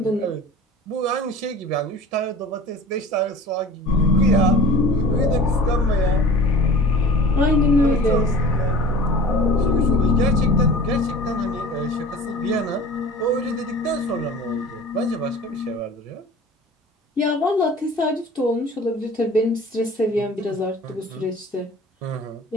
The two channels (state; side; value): normal; both; correlation 0.40